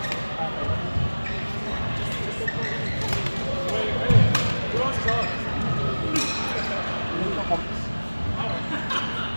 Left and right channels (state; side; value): inverted; both; correlation -1.00